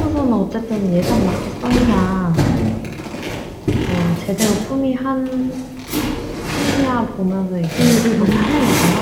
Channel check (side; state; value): both; identical; correlation 1.00